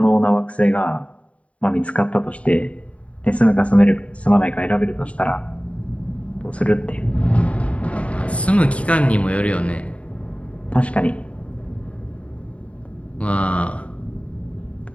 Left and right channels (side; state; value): right; late; 0.064 ms